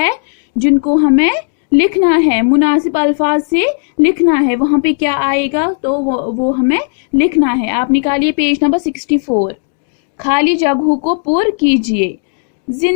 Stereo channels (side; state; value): right; silent; 67 dB below the other